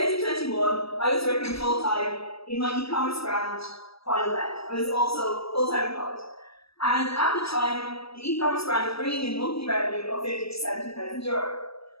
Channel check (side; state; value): right; late; 0.76 ms